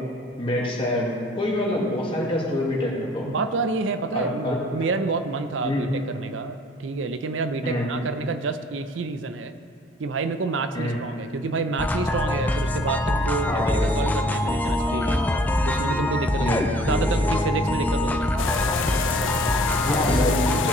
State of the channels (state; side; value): normal; both; correlation 0.54